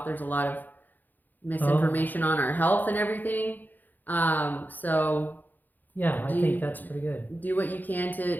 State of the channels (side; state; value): right; late; 0.086 ms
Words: There's a lot of misinformation on our health and everything. So yeah, I think that's pretty good. Do what you can